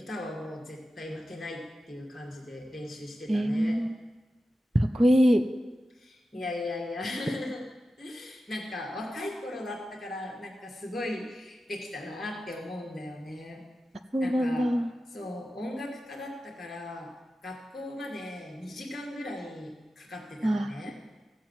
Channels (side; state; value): both; normal; correlation 0.92